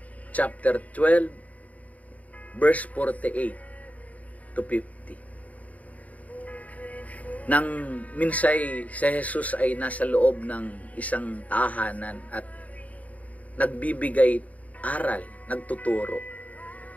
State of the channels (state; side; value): late; right; 0.071 ms